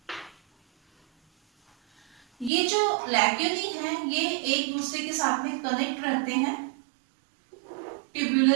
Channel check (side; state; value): left; drops out; at 2.5 s